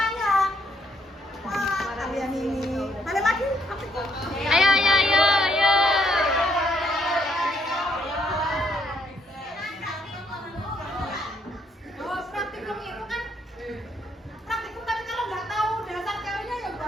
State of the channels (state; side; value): normal; both; correlation 0.71